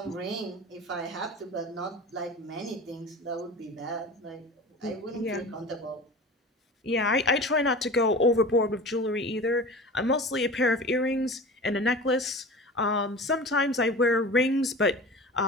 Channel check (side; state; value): both; normal; correlation 0.35